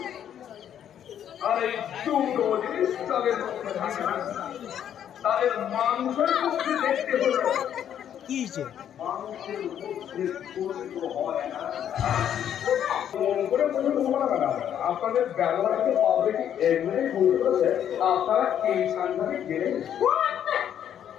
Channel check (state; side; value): quieter; right; 9.7 dB